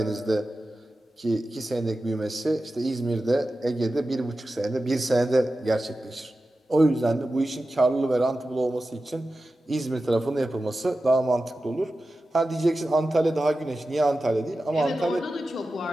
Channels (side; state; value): both; normal; correlation 0.93